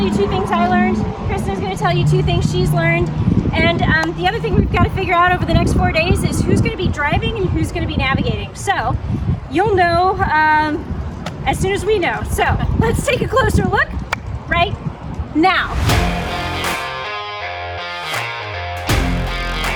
you 2 things I learned. Kristin is going to tell you 2 things she's learned. And the other thing we've got to figure out over the next 4 days is who's going to be driving and who's going to be navigating. So you'll know as soon as we know. So let's take a closer look right now.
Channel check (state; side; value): identical; both; correlation 1.00